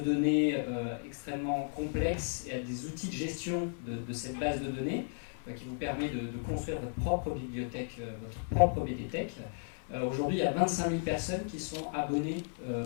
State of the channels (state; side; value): silent; right; 55 dB below the other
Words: extrêmement complexe et à des outils de gestion de cette base de données qui vous permet de construire votre propre bibliothèque, votre propre BDTech. Aujourd'hui, il y a 25 000 personnes qui sont abonnées